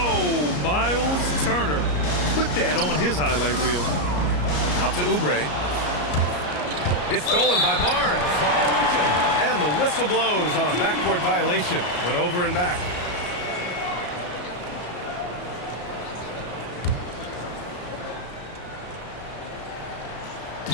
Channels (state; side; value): late; right; 33 ms